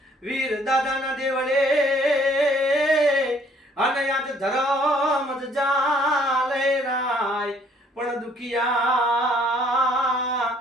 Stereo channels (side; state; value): both; normal; correlation 0.61